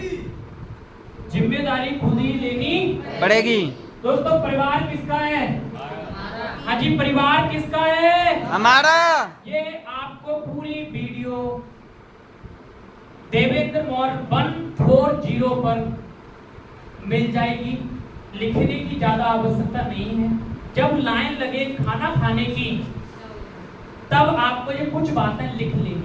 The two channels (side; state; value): both; identical; correlation 1.00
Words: जिम्मेदारी खुद ही लेनी पड़ेगी। दोस्तों परिवार किसका है? हाँ जी, परिवार किसका है? हमारा। ये आपको पूरी वीडियो देवेंद्र मौर्य 140 पर मिल जाएगी। लिखने की ज्यादा आवश्यकता नहीं है। जब लाइन लगे खाना खाने की तब आपको ये कुछ बातें लिख